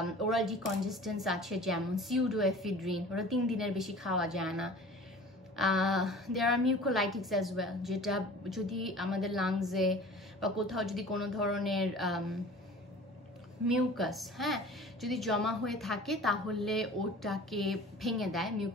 ওরাল ডিকনজেস্টেন্স আছে যেমন সিউডোএফিড্রিন, ওরা 3 দিনের বেশি খাওয়া যায় না। দেয়ার আর মিউকোলাইটিক্স অ্যাজ ওয়েল, যেটা যদি আমাদের লাংসে বা কোথাও যদি কোনো ধরনের মিউকাস যদি জমা হয়ে থাকে তাহলে ওটাকে ভেঙে দেয়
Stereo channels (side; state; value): both; normal; correlation 0.43